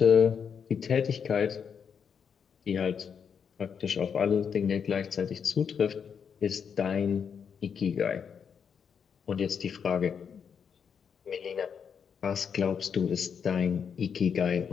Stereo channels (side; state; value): right; quieter; 7.0 dB